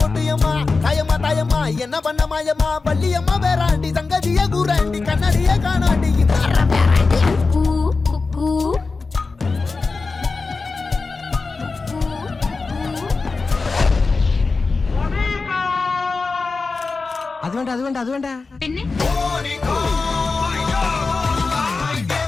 கொட்டியம்மா தாயம்மா தாயம்மா என்ன பண்ண மாயம்மா பள்ளியம்மா வேறாண்டி சங்கதிய கூறாண்டி கண்ணடிய காணாண்டி അത് വേണ്ട പിന്നെ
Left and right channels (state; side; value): quieter; right; 4.1 dB